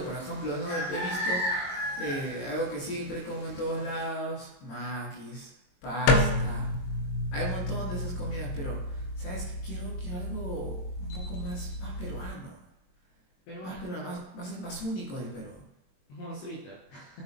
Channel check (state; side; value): late; right; 22 ms